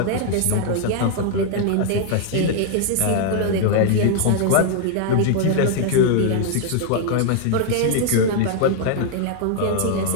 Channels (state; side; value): different; both; correlation 0.00